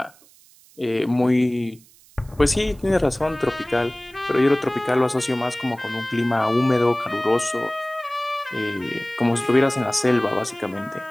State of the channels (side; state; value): right; noise; hiss, 27 dB below the sound